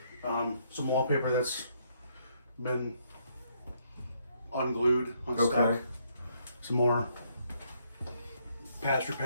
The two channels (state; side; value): inverted; both; correlation -0.71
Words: Some wallpaper that's been unglued, unstuck. Okay. Some more patch